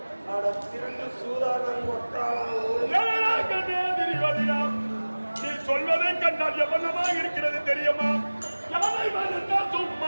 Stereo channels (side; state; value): both; inverted; correlation -1.00